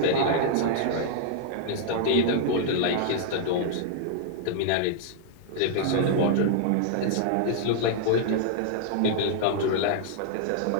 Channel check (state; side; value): different; both; correlation -0.01